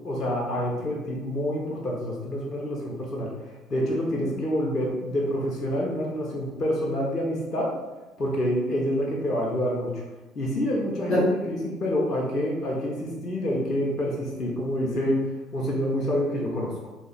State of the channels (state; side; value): normal; both; correlation 0.67